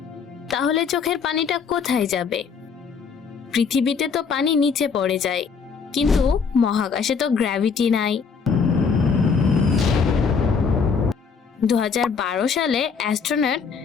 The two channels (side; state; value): right; quieter; 5.8 dB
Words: তাহলে চোখের পানিটা কোথায় যাবে? পৃথিবীতে তো পানি নিচে পড়ে যায়, কিন্তু মহাকাশে তো গ্র্যাভিটি নাই। 2012 সালে অ্যাস্ট্রোনট